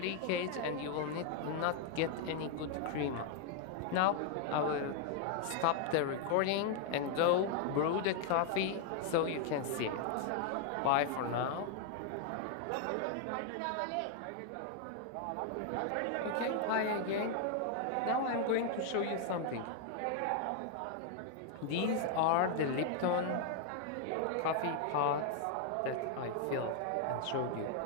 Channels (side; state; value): both; different; correlation 0.00